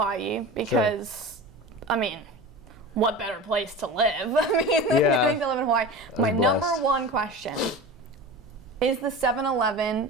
because, I mean, what better place to live? I mean, getting to live in Hawaii. My number one question. Is the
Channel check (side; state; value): both; normal; correlation 0.31